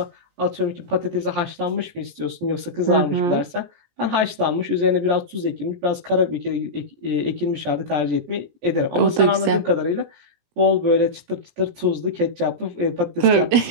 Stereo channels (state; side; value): late; left; 17 ms